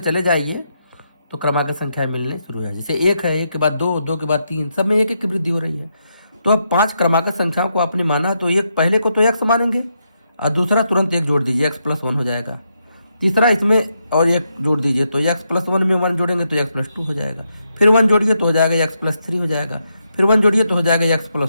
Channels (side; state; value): both; inverted; correlation -0.82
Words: जाइए तो क्रमागत संख्याएं मिलने शुरू हो जाएगी। जैसे 1 है, 1 के बाद 2, 2 के बाद 3, सब में 1 1 की वृद्धि हो रही है। तो अब 5 क्रमागत संख्याओं को आपने माना, तो एक पहले को तो x मानेंगे, और दूसरा तुरंत 1 जोड़ दीजिए, x+1 हो जाएगा। तीसरा इसमें और 1 जोड़ दीजिए, तो x+1 में 1 जोड़ेंगे तो x+2 हो जाएगा। फिर 1 जोड़िए तो हो जाएगा x+3 हो जाएगा। फिर 1 जोड़िए तो हो जाएगा